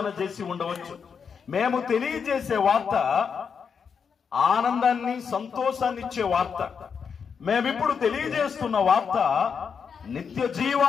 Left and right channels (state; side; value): quieter; right; 6.4 dB